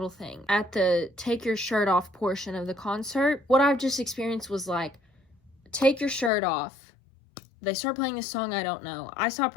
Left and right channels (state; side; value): drops out; right; at 6.3 s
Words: thing. At the take your shirt off portion of the concert, what I've just experienced was like take your shirt off. They start playing a song I don't know. I stop